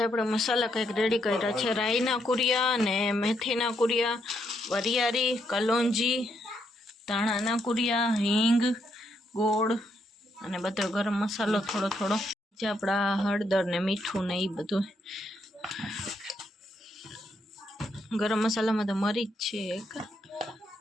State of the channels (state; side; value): normal; both; correlation 0.77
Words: આપણે મસાલા કંઈક રેડી કર્યા છે, રાઈના કુરિયા અને મેથીના કુરિયા, વરિયાળી, કલોંજી, ધાણાના કુરિયા, હિંગ, ગોળ અને બધો ગરમ મસાલો થોડો થોડો, જે આપણા હળદર ને મીઠું ને એ બધું. ગરમ મસાલામાં તો મરી જ છે એક.